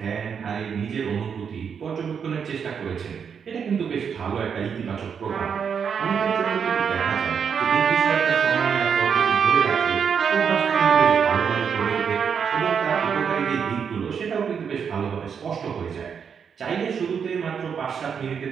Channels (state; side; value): quieter; left; 6.9 dB